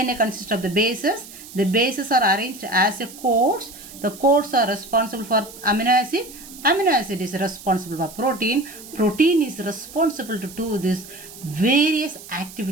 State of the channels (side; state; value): right; noise; hiss, 16 dB below the sound